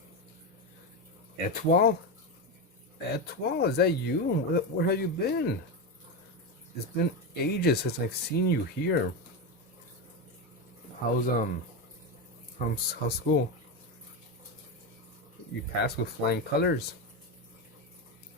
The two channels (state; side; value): normal; both; correlation 0.14